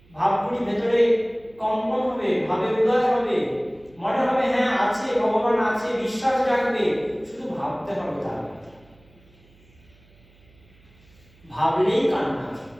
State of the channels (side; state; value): right; noise; hum, 29 dB below the sound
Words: ভাবগুলি ভেতরে কম্পন হবে, ভাবের উদয় হবে, মনে হবে হ্যাঁ আছে, ভগবান আছে, বিশ্বাস রাখবে। শুধু ভাবতে হবে তার কথা। ভাবলেই কান্না